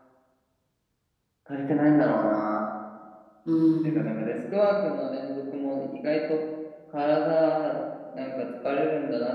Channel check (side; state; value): both; identical; correlation 1.00